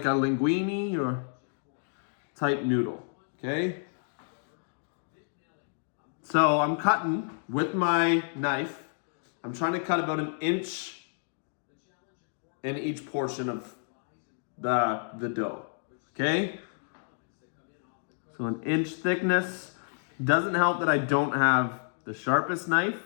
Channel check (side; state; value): right; silent; digital silence